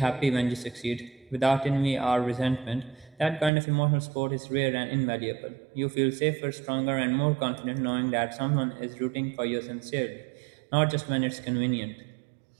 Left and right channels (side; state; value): left; drops out; at 3.5 s